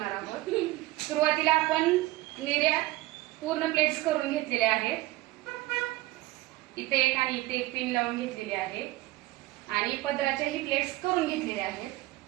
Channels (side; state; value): left; quieter; 18.5 dB